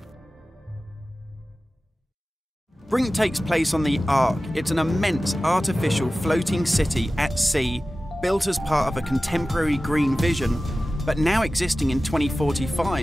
Brink takes place on the Ark. It's an immense artificial floating city at sea, built as part of a contemporary green vision, but now existing in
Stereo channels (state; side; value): normal; both; correlation 0.96